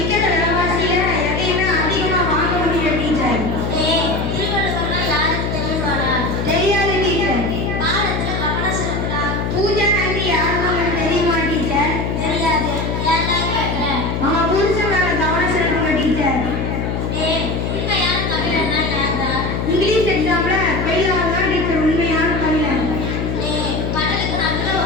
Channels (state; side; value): noise; left; hum, 1 dB below the sound